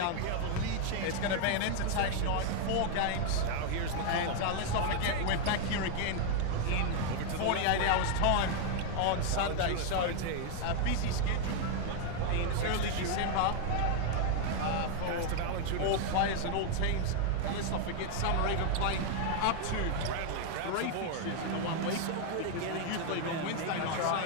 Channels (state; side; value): different; both; correlation 0.00